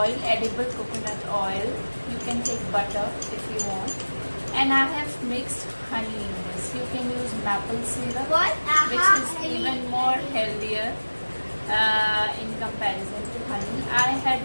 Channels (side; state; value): both; inverted; correlation -1.00